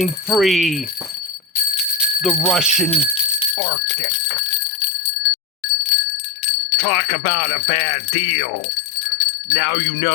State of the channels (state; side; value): drops out; right; at 3.6 s